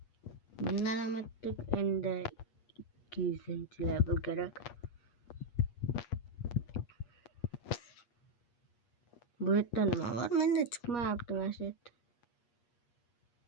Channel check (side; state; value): right; late; 8.4 ms